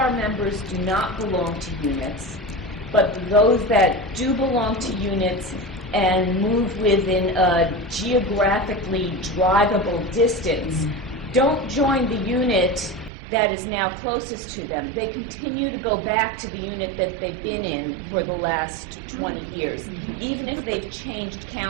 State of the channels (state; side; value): drops out; left; at 13.1 s